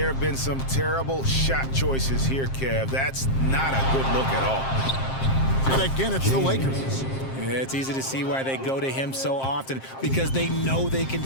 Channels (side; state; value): right; late; 7.5 ms